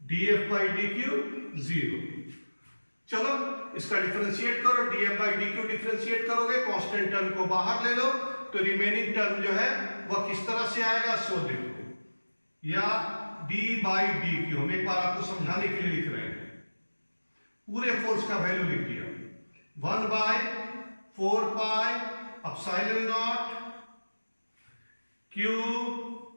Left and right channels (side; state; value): both; inverted; correlation -1.00